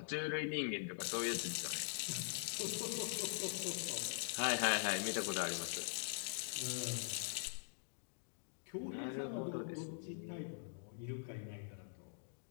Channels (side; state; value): right; silent; digital silence